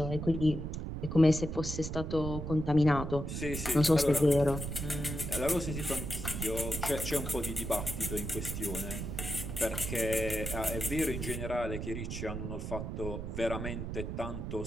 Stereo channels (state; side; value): noise; right; rumble, 5 dB below the sound